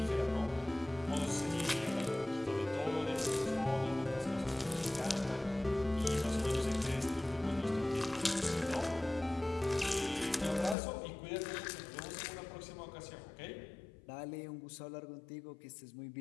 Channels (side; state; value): right; drops out; at 10.8 s